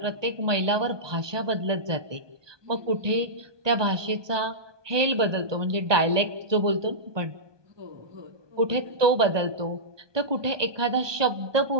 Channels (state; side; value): late; left; 1.2 ms